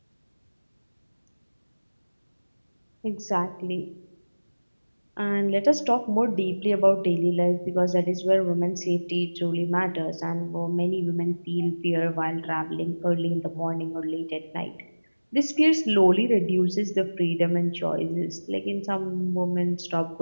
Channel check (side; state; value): both; inverted; correlation -1.00